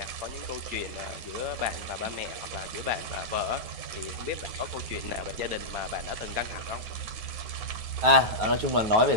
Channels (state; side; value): late; left; 9.3 ms